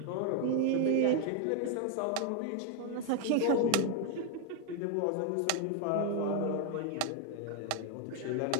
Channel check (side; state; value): both; different; correlation 0.01